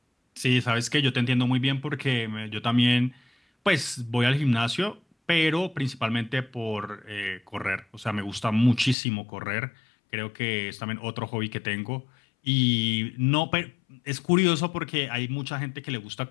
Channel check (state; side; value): drops out; right; at 9.0 s